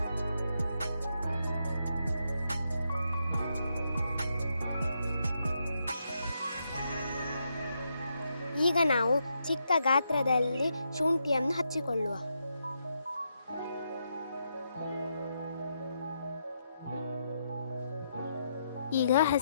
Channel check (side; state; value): both; inverted; correlation -0.80